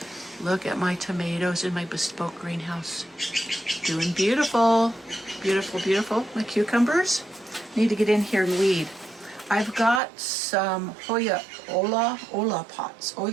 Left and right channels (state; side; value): drops out; left; at 10.0 s